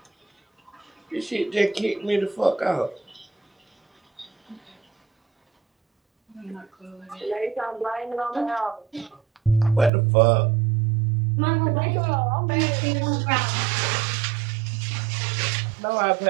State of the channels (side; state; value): left; drops out; at 9.9 s